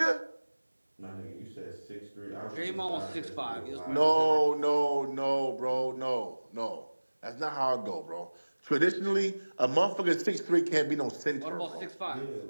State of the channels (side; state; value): both; inverted; correlation -1.00